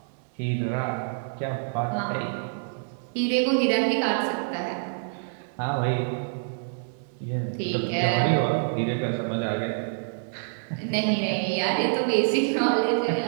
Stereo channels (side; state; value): left; silent; digital silence